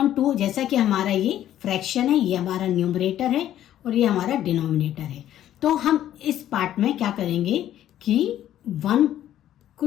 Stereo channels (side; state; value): right; quieter; 12.0 dB